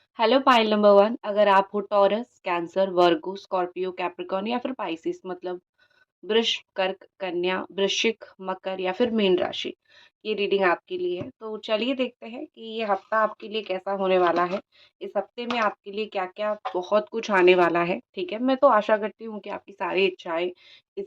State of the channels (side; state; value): both; identical; correlation 1.00